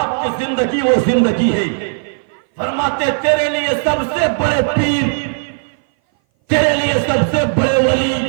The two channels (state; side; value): silent; left; 59 dB below the other